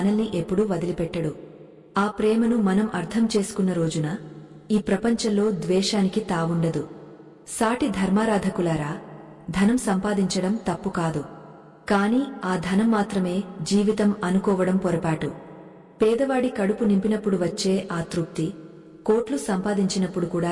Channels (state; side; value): identical; both; correlation 1.00